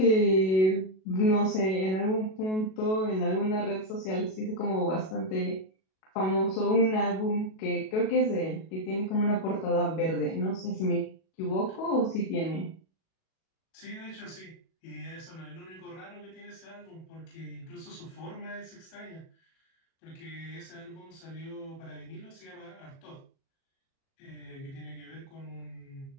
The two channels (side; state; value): right; late; 37 ms